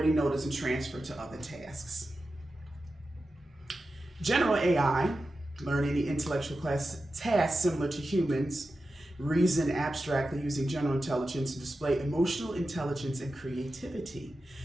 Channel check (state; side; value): normal; both; correlation 0.92